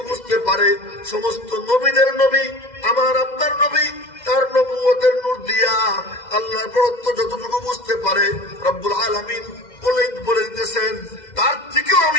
বুঝতে পারে, সমস্ত নবীদের নবী আমার আপনার নবী তার নবুয়তের নূর দিয়া আল্লাহর বড়ত্ব যতটুকু বুঝতে পারে, রব্বুল আলামিন বলে দিতেছেন তার থেকেও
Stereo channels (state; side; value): late; right; 2.1 ms